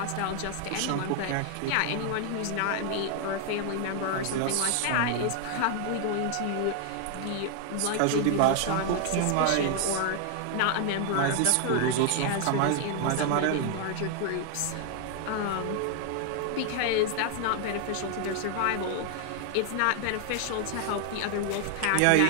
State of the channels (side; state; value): both; different; correlation 0.00